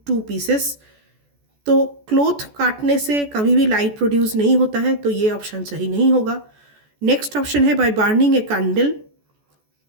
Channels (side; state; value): left; late; 14 ms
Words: 2 pieces. तो क्लॉथ काटने से कभी भी लाइट प्रोड्यूस नहीं होता है, तो ये ऑप्शन सही नहीं होगा। नेक्स्ट ऑप्शन है by burning a candle.